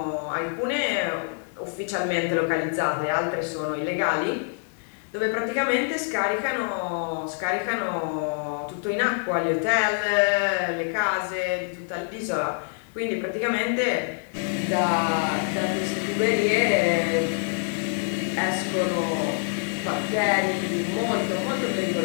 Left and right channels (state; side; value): silent; right; 61 dB below the other